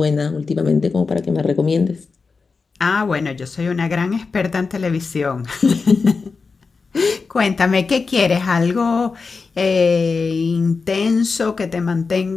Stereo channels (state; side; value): quieter; right; 4.6 dB